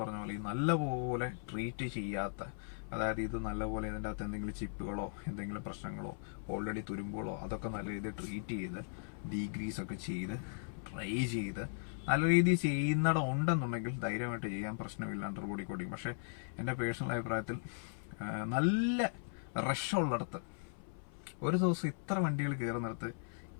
പറഞ്ഞ പോലെ നല്ലപോലെ ട്രീറ്റ് ചെയ്യാത്ത, അതായത് ഇത് നല്ലപോലെ ഇതിൻ്റെ അകത്ത് എന്തെങ്കിലും ചിപ്പുകളോ എന്തെങ്കിലും പ്രശ്നങ്ങളോ ഓൾറെഡി തുരുമ്പുകളോ അതൊക്കെ നല്ല രീതിയിൽ ട്രീറ്റ് ചെയ്ത് ഡീഗ്രീസ് ഒക്കെ ചെയ്ത് ട്രൈ ചെയ്ത് നല്ല രീതിയിൽ ചെയ്യുന്നിടം ഉണ്ടെന്നുണ്ടെങ്കിൽ ധൈര്യമായിട്ട് ചെയ്യാൻ പ്രശ്നമില്ല അണ്ടർ ബോഡി കോട്ടിങ്. പക്ഷെ എൻ്റെ പേഴ്സണൽ അഭിപ്രായത്തിൽ നല്ല റഷുള്ളിടത്ത് ഒരു ദിവസം ഇത്ര വണ്ടികൾ കയറുന്നിടത്ത്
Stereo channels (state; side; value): silent; right; 53 dB below the other